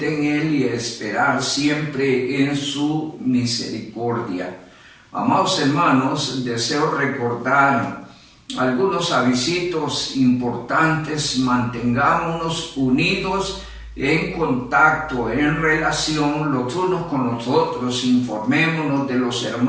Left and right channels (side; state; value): both; identical; correlation 1.00